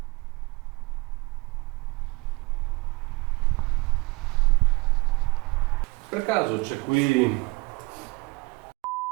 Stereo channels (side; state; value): left; quieter; 24.0 dB